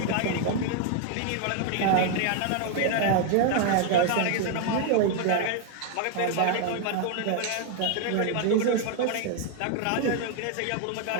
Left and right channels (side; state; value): both; different; correlation 0.00